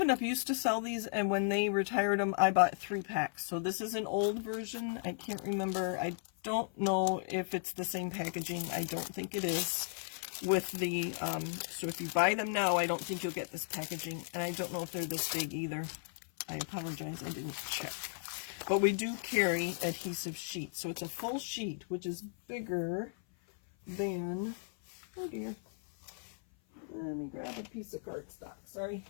Up! Used to sell these, and when they retired them, I bought 3 packs. So this is an old version. I can't remember. I don't know if it's the same packaging. I don't think it is. With the, so if you buy them now, I don't think you'll get this packaging. And I don't know if they're this big either. I apologize, I didn't check. But we do carry adhesive sheets. So it's a full sheet, which is bigger than, oh dear. Let me grab a piece of cardstock, sorry.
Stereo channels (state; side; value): silent; right; 54 dB below the other